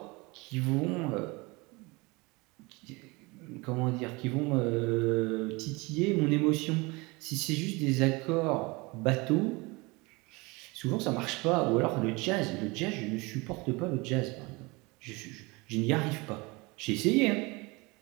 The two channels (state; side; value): quieter; left; 25.3 dB